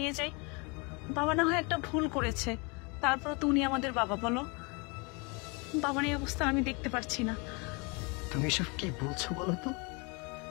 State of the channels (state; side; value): quieter; right; 30.5 dB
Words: যাই। বাবা না হয় একটা ভুল করেছে, তারপর তো উনি আমাদের বাবা। বলো, বাবার এই অবস্থা আমি দেখতে পারছি না। তুমি সব কি বলছো বলো তো?